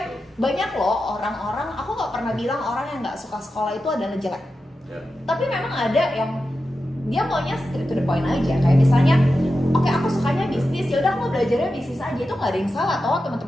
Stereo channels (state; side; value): normal; both; correlation 0.91